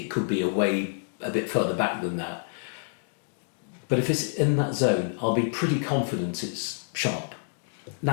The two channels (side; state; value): right; silent; digital silence